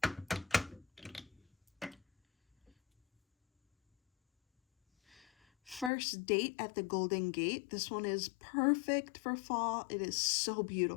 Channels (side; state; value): right; drops out; at 5.9 s